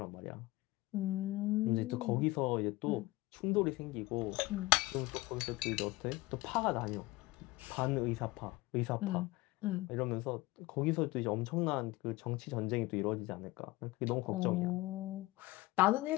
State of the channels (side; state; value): right; quieter; 19.9 dB